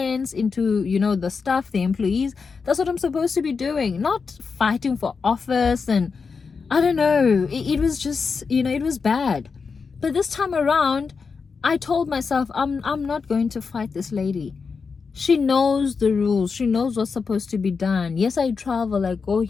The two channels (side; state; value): right; quieter; 5.2 dB